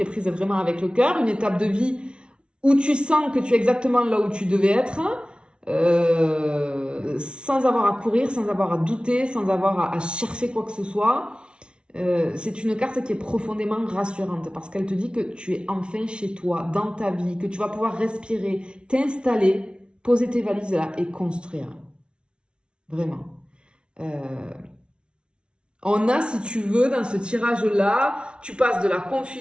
est prise vraiment avec le cœur, une étape de vie où tu sens que tu es exactement là où tu devais être, sans avoir à courir, sans avoir à douter, sans avoir à chercher quoi que ce soit. C'est une carte qui est profondément rassurante parce qu'elle te dit que tu es enfin chez toi, dans ta vie, que tu vas pouvoir respirer, t'installer, poser tes valises là et construire. Vraiment. On a, si tu veux, dans ce tirage-là, tu passes de la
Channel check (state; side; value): late; left; 0.057 ms